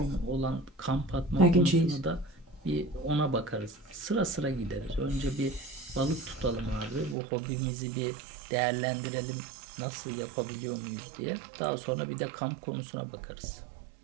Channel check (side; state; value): left; drops out; at 7.2 s